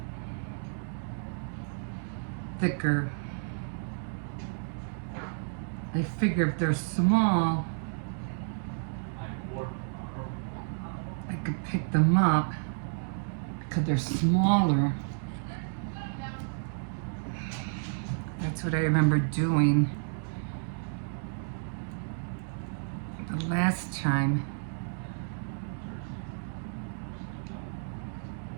thicker. I figure if they're small, I could pick them up because they're smaller. That's what I remember doing the last time.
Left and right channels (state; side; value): silent; left; digital silence